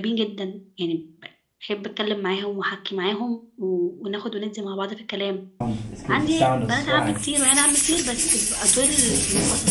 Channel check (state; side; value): identical; both; correlation 1.00